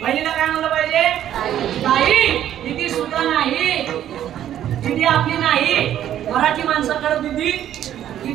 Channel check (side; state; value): left; quieter; 11.2 dB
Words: बहिणीला काय म्हणलं पाहिजे ताई. दिदी सुद्धा नाही, दिदी आपली नाही. मराठी माणसाकडे दिदी,